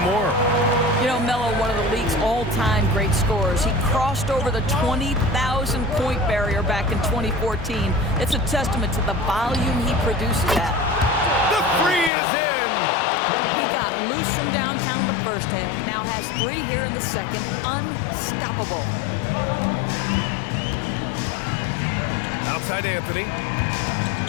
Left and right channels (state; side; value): drops out; right; at 12.1 s